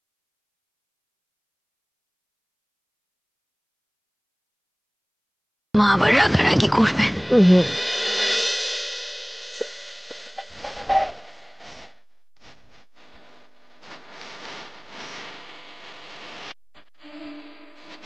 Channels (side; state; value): both; identical; correlation 1.00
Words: মা আবার রাগারাগি করবে।